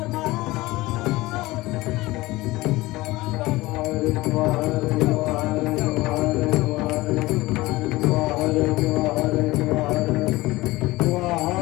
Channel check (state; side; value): quieter; right; 19.5 dB